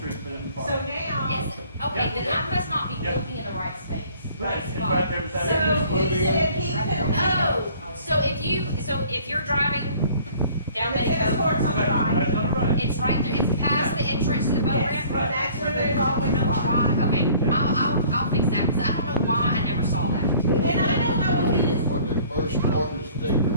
street for them to park. So now, Is, okay, then I must not be Yeah. looking in the right space. Right, it's right there beside the so tennis court. he said he couldn't. Oh, so if you're driving down The tennis Betty court's on the Right, right. right on the right. it's right there, it's past the entrance to the boat Yes, ramp? but that's where there's always parked. Right, okay, Yeah. I'll fix that, because I don't know why I never saw that. And I don't know if he was, When they first started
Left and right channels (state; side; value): inverted; both; correlation -0.53